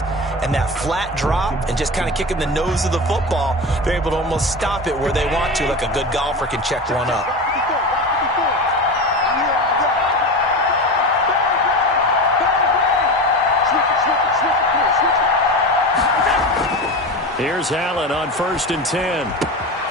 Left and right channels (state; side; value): normal; both; correlation 0.25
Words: and that flat drop and just kind of kicking the nose of the football. They're able to almost stop it where they want to, like a good golfer can check one up. Here's Allen on 1st and